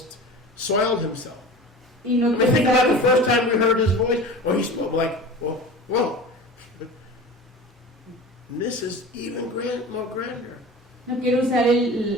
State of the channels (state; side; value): normal; both; correlation 0.35